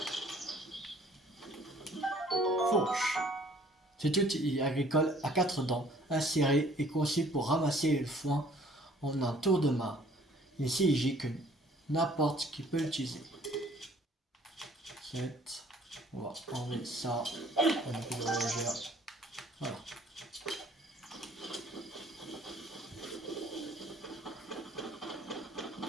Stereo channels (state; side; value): normal; both; correlation 0.57